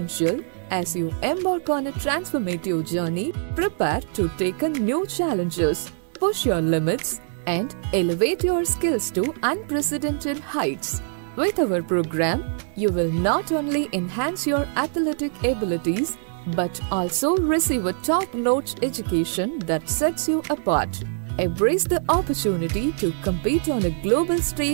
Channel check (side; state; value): left; silent; 63 dB below the other